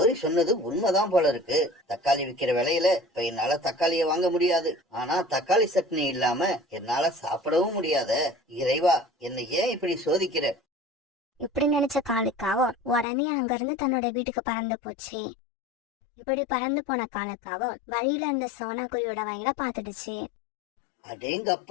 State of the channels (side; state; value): right; drops out; at 13.1 s